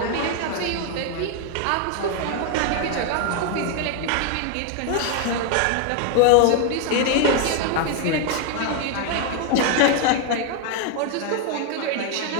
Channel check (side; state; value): both; different; correlation 0.01